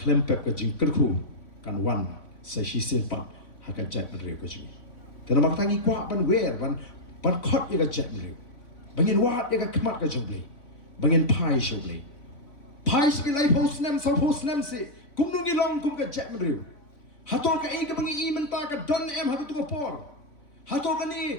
ke jingkerku kan wan sa shisin pat haka jat menriu ke jing. Tena mak tangi kuak ban wer ban kot ya ka jat menriu. Bangin wat ya ka kemat ka jong blei. Bangin pai sho blei. Pai si lai post nem sa post nem si kum nungi long kum ka jat menriu. Hatol ka ka bangi I menta ka don em haka tu por. Hatol ka ni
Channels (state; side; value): late; right; 3.5 ms